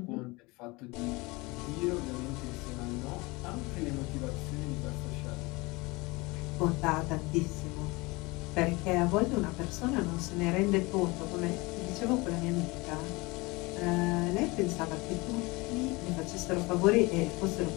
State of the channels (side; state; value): right; quieter; 24.3 dB